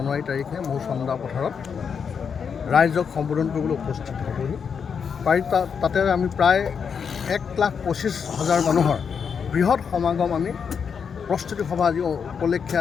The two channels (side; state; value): right; quieter; 6.6 dB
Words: তাৰিখে মোৰ চন্দা পথাৰত ৰাইজক সম্বোধন কৰিবলৈ উপস্থিত হ'বহি। তাতে আমি প্ৰায় 1,25,000 মানুহৰ বৃহৎ সমাগম আমি প্ৰস্তুতি সভা আজি উপলক্ষে